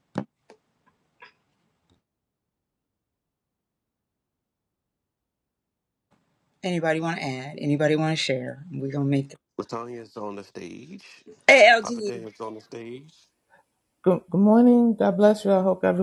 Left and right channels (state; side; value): identical; both; correlation 1.00